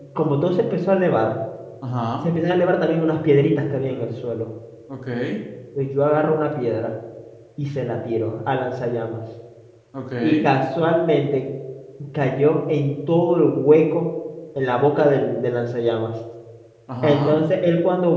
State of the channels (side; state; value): both; identical; correlation 1.00